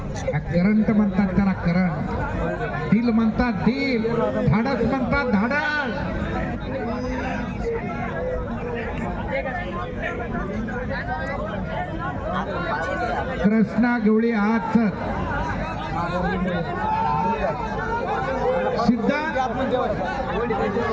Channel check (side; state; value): both; identical; correlation 1.00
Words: करंट म्हणतात त्याला, करंट. दिल म्हणतात दिल, धाडस म्हणतात धाडस. कृष्णा गवळी हात